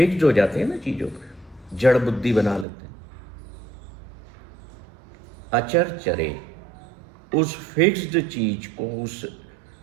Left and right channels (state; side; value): drops out; left; at 2.7 s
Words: हो जाते हैं ना चीज़ों पर, जड़ बुद्धि बना लेते हैं। अचर चरे, उस फिक्स्ड चीज को, उस